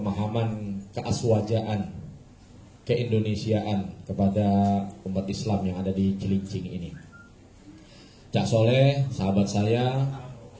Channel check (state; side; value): identical; both; correlation 1.00